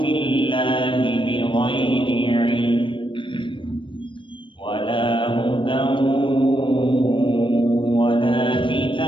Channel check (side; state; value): right; late; 0.24 ms